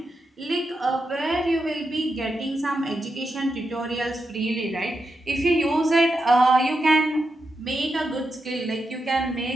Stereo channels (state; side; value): normal; both; correlation 0.86